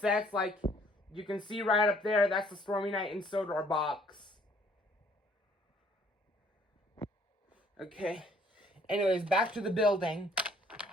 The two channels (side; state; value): both; normal; correlation 0.61